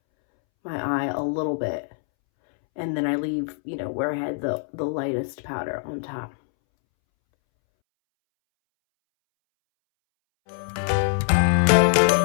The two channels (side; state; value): right; silent; 63 dB below the other